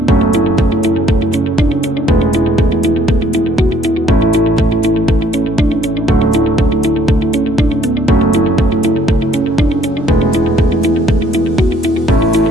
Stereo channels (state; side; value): normal; both; correlation 0.63